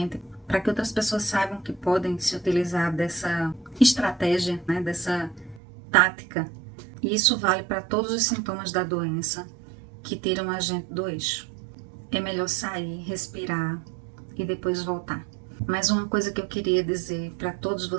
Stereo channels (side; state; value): left; drops out; at 5.6 s